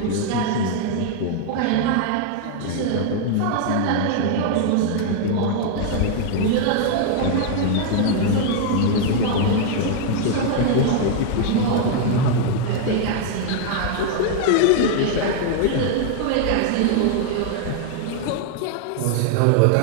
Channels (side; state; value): both; different; correlation 0.00